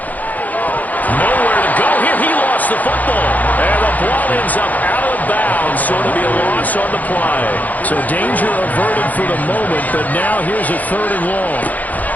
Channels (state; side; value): late; right; 0.079 ms